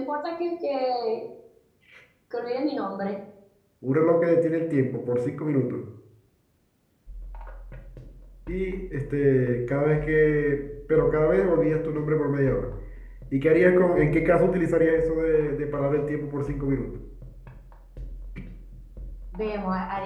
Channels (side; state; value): both; identical; correlation 1.00